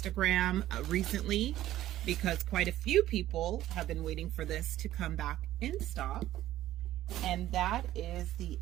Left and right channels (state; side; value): quieter; left; 13.8 dB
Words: recently, because quite a few people have been waiting for this to come back in stock. And that is the